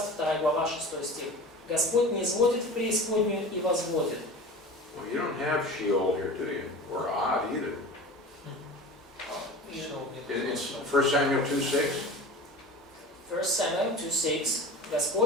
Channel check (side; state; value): both; normal; correlation 0.36